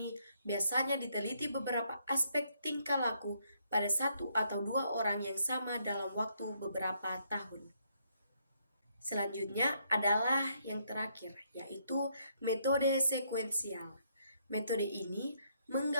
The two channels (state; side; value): inverted; both; correlation -0.73